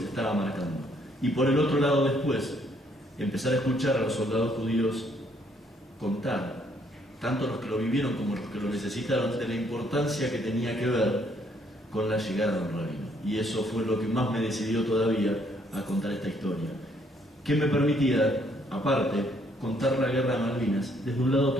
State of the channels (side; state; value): both; normal; correlation 0.68